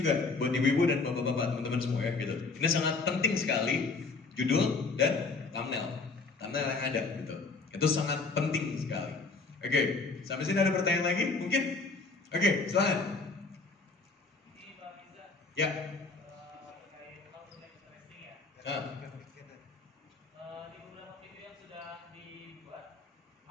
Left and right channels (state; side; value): quieter; right; 4.0 dB